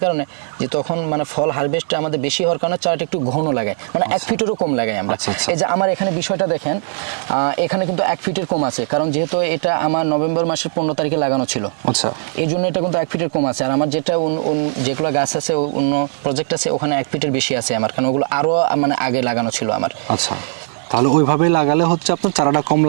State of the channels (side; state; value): left; silent; 67 dB below the other